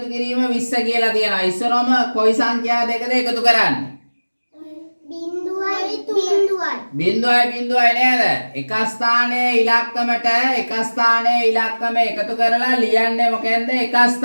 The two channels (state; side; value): inverted; both; correlation -1.00